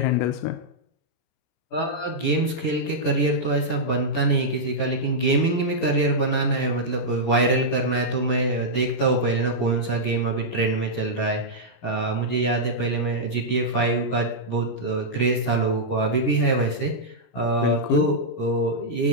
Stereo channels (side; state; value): right; late; 17 ms